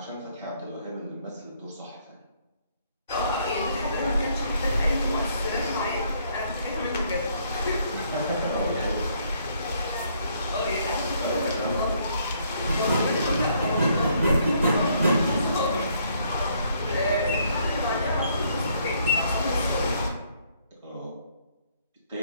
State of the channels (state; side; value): inverted; both; correlation -0.68